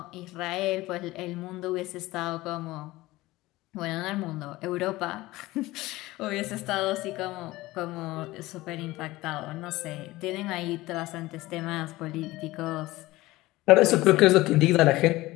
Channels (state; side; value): quieter; right; 18.7 dB